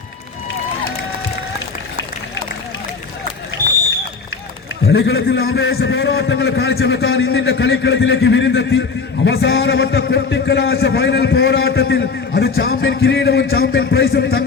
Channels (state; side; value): quieter; right; 4.9 dB